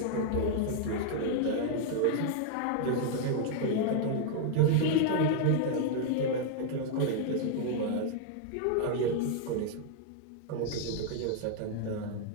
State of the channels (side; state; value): both; different; correlation 0.00